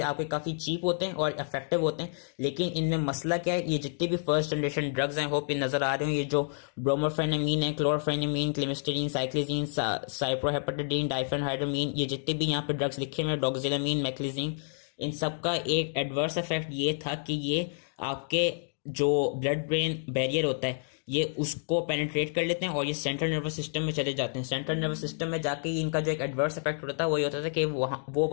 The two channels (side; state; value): right; silent; digital silence